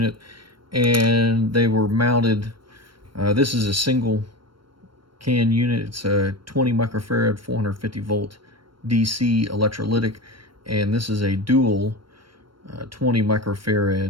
and they were mounted. This is a single can unit. It's a 20 microfarad 450 volt DC electrolytic, and this is a dual 20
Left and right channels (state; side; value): late; left; 0.73 ms